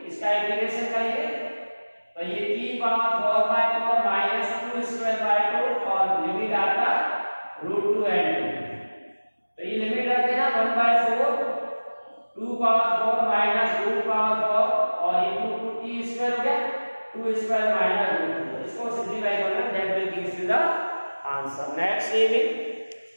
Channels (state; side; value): inverted; both; correlation -1.00